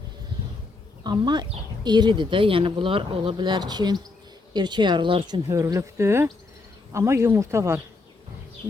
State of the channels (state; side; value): quieter; right; 3.6 dB